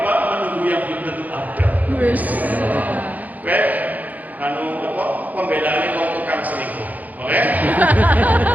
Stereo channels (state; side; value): late; left; 0.079 ms